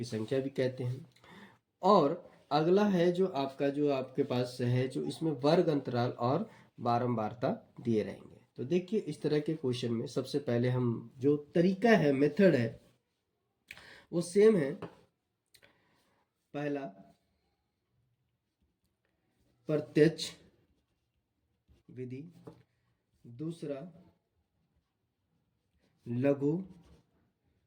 संख्या भी कहते हैं। और अगला है जो आपके पास है जो इसमें वर्ग अंतराल और बारंबारता दिए रहेंगे। तो देखिए इस तरह के क्वेश्चन में सबसे पहले हम जो तरीका है मेथड है वो सेम है। पहला प्रत्यक्ष विधि, दूसरा लघु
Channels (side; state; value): both; identical; correlation 1.00